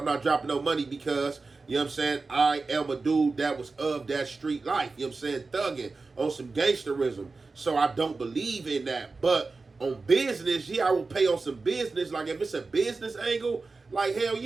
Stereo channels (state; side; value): quieter; left; 3.9 dB